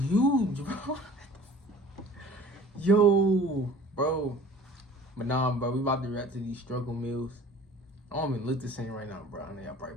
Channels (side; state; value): both; normal; correlation 0.46